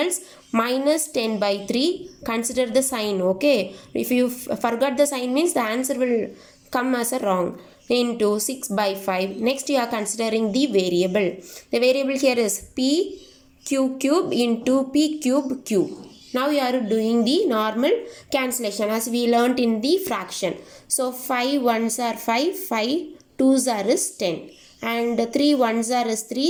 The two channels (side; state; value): both; identical; correlation 1.00